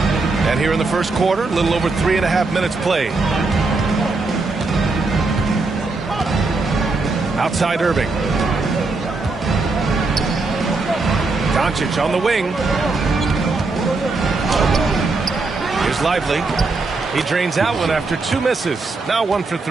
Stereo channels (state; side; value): quieter; left; 3.7 dB